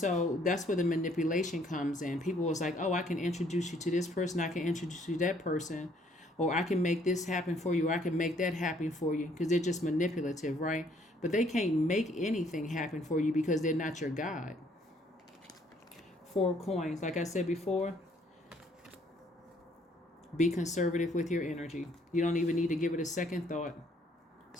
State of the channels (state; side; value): normal; both; correlation 0.64